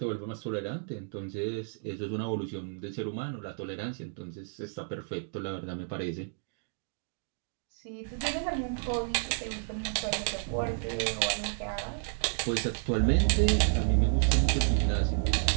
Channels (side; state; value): left; silent; 57 dB below the other